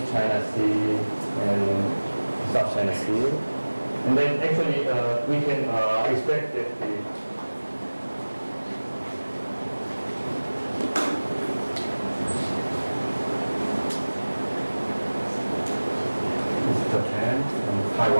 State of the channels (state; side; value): inverted; both; correlation -1.00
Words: China Sea and South China Sea. And then actually we can expect that the Japan and